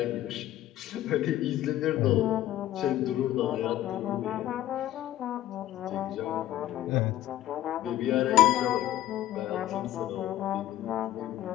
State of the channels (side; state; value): right; quieter; 13.6 dB